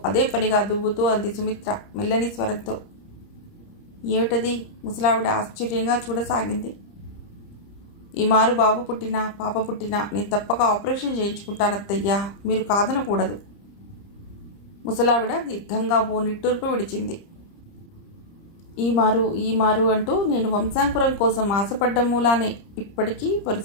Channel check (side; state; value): right; late; 30 ms